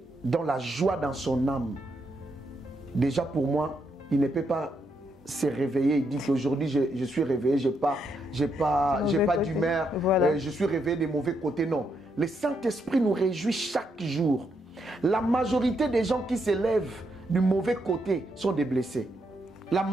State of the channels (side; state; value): both; normal; correlation 0.79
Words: dans la joie dans son âme. Déjà pour moi, il ne peut pas se réveiller et dire qu'aujourd'hui je suis réveillé, j'ai pas d'humeur, voilà. Je suis réveillé des mauvais côtés. Non, le Saint-Esprit nous réjouit chaque jour. La majorité des gens qui se lèvent du mauvais côté sont des blessés. La